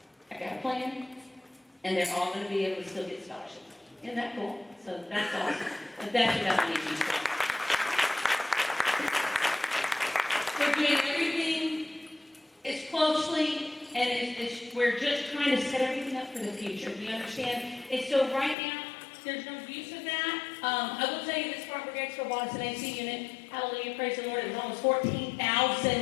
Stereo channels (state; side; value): drops out; right; at 18.6 s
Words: I got a plan, and they're all going to be able to still get scholarships. Isn't that cool? So that's awesome. But that's what that needs to be. We're doing everything as closely, and we're just trying to set everything up for the future. Do you understand? And so right now, there's no use of that. I will tell you this, Spartanburg Expo bought us an AC unit. Hallelujah, praise the Lord. It was almost $14,000. I